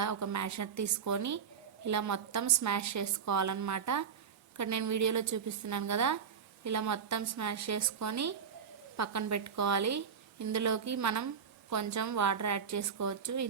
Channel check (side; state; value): left; quieter; 6.9 dB